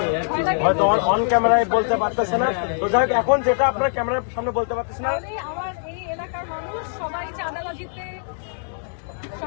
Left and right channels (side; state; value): right; silent; digital silence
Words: হয়তো অন ক্যামেরায় বলতে পারতেছি না, তো যাই হোক, এখন যেটা আপনার ক্যামেরার সামনে বলতে পারতেছি না। তাহলে আমার এই এলাকার মানুষ সবাই চাঁদাবাজিতে